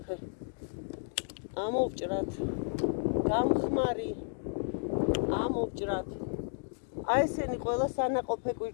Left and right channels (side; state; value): right; silent; digital silence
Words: ამოვჭრათ, გამხმარი, ამოვჭრათ. აი ესენი ყველა სანაყოფე